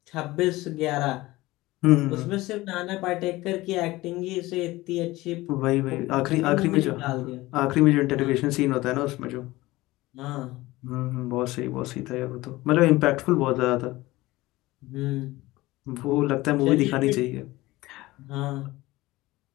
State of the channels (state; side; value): quieter; right; 19.1 dB